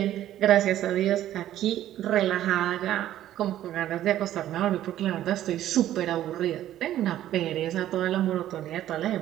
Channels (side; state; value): left; quieter; 12.6 dB